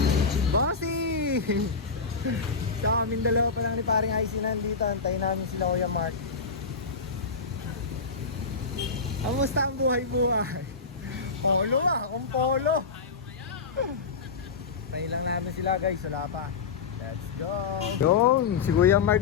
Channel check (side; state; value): right; quieter; 4.8 dB